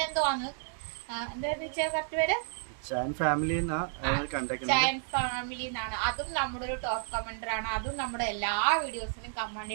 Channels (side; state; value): left; silent; 57 dB below the other